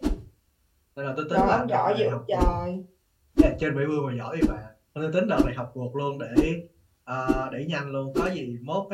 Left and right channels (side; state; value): both; identical; correlation 1.00